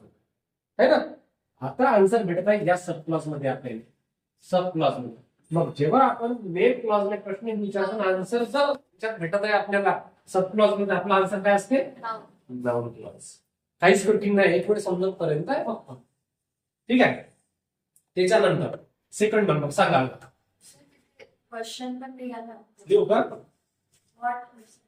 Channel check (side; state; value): both; identical; correlation 1.00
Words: है ना. आता आन्सर भेटत आहे या सब क्लॉज मध्ये आपल्याला. सब क्लॉज मध्ये. मग जेव्हा आपण मेन क्लॉजला प्रश्न विचारतो, आन्सर जर त्याच्यात भेटत आहे आपल्याला सब क्लॉज मध्ये, आपला आन्सर काय असते? Noun clause. काहीच कठीण नाही, एक वेळ समजत पर्यंत आहे फक्त. ठीक आहे. त्याच्यानंतर सेकंड नंबर सांगा. क्वेश्चन पण लिहायला देऊ का? व्हॉट.